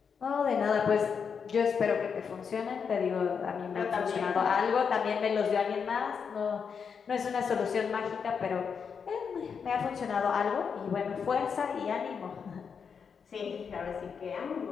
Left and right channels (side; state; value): right; quieter; 6.4 dB